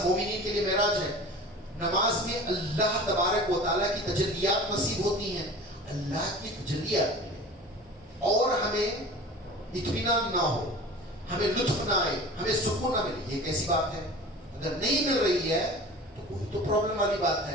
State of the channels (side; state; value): both; normal; correlation 0.38